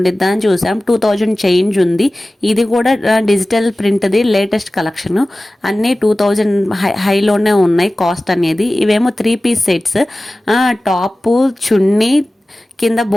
అని చూసాం. 2000 చేంజ్ ఉంది. ఇది కూడా డిజిటల్ ప్రింట్ది లేటెస్ట్ కలెక్షన్. అన్నీ 2000 హైలోనే ఉన్నాయి కాస్ట్ అనేది. ఇవేమో 3 పీస్ సెట్స్. టాపు, చున్నీ, కింద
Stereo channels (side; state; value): both; normal; correlation 0.97